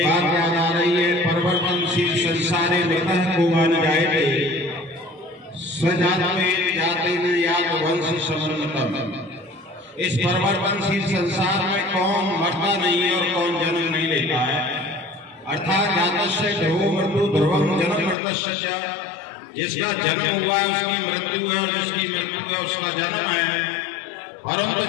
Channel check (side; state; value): right; drops out; at 18.2 s